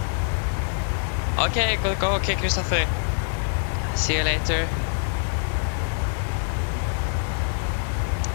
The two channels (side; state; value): right; silent; digital silence